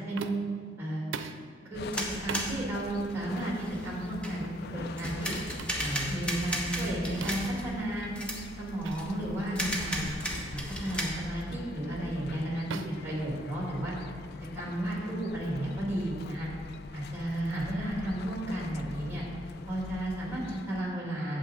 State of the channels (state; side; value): normal; both; correlation 0.67